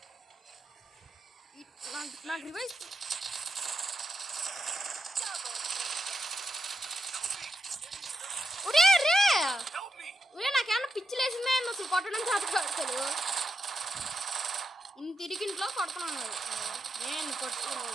నాకు రివైవ్. రే నాకేమన్నా పిచ్చి లేసిందే అసలు కొట్టడం చేతకాడు. ఇంత తిరిగింట్లో కొడుతున్నాను నేను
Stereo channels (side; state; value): both; normal; correlation 0.85